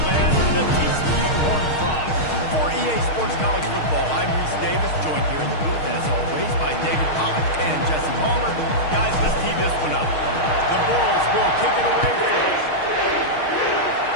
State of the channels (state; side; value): late; right; 6.5 ms